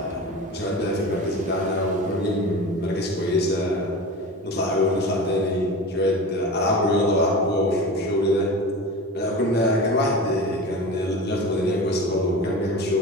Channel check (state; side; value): normal; both; correlation 0.31